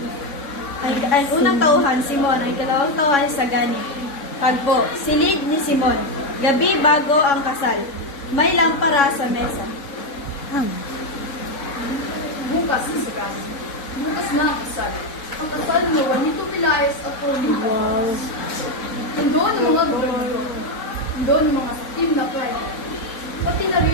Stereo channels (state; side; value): late; right; 3.6 ms